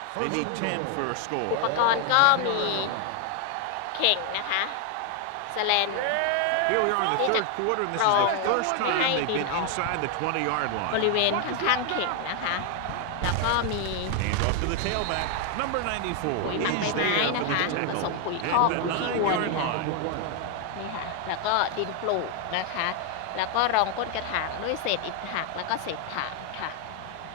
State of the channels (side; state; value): both; different; correlation 0.00